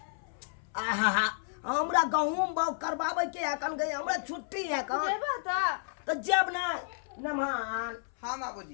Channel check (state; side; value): silent; right; 57 dB below the other